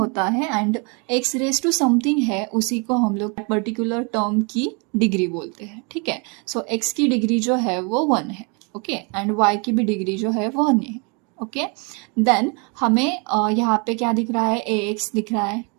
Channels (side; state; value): left; quieter; 32.8 dB